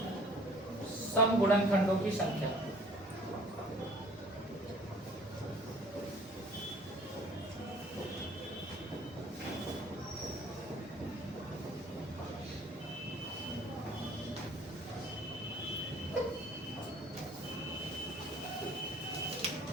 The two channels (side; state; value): both; normal; correlation 0.53